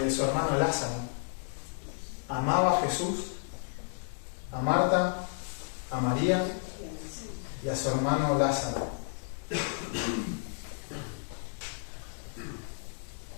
su hermano Lázaro. Amaba a Jesús, a Marta, a María y a su hermano Lázaro.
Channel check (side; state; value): right; silent; digital silence